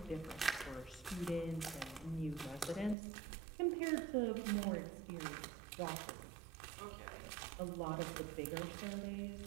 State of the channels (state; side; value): drops out; left; at 3.0 s